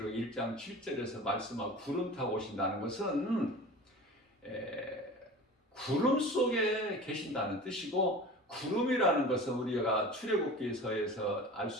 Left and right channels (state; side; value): normal; both; correlation 0.37